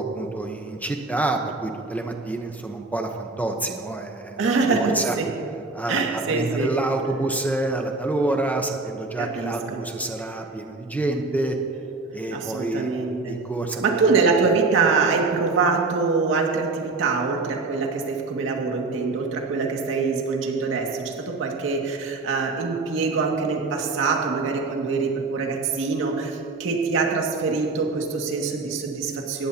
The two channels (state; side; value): quieter; left; 3.6 dB